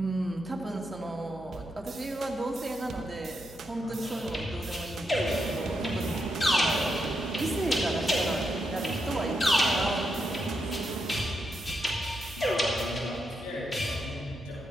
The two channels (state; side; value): noise; right; hum, 19 dB below the sound